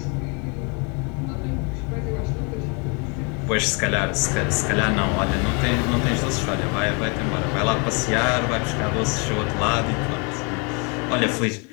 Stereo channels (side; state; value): right; quieter; 33.3 dB